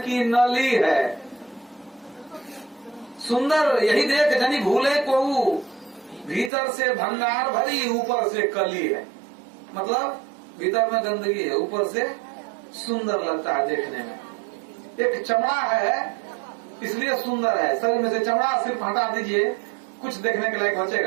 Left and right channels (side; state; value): left; drops out; at 6.5 s